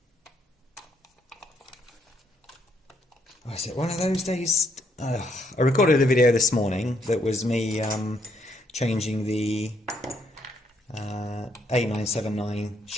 Oh, is it one of those days? I recorded a video this morning that was me changing the 8979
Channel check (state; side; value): normal; both; correlation 0.72